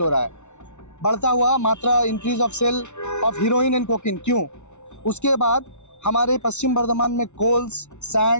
हो रहा है। बढ़ता हुआ मात्रा, increase of sale of heroin and cocaine. क्यों? उसके बाद हमारे पश्चिम बर्धमान में कोल्स,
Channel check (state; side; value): late; right; 0.82 ms